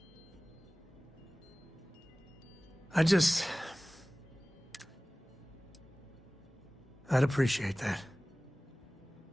I'd appreciate that.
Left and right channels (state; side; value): normal; both; correlation 0.98